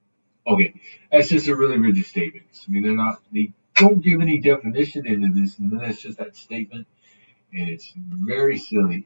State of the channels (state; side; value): inverted; both; correlation -1.00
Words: okay, that's just a really rigid statement. I mean, they don't give any definition into this, and then it's just that statement, and it's very silly.